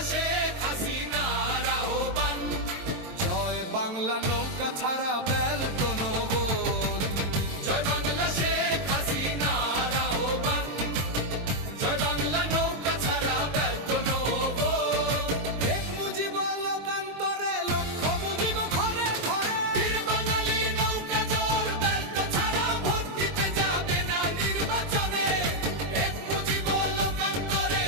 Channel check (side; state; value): left; late; 22 ms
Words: শেখ হাসিনার আহ্বান, জয় বাংলা নৌকা ছাড়া ব্যালট নো ভোট। জয় বাংলা শেখ হাসিনার আহ্বান, জয় বাংলা নৌকা ছাড়া ব্যালট নো ভোট। এক মুজিব লোকান্তরে লক্ষ মুজিব ঘরে ঘরে, বীর বাঙালি নৌকা জোর ব্যালট ছাড়া ভোট দিতে যাবে না নির্বাচনে। এক মুজিব লোকান্তরে